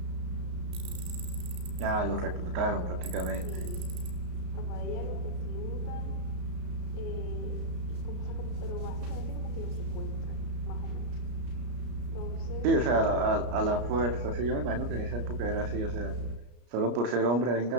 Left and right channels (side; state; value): left; late; 34 ms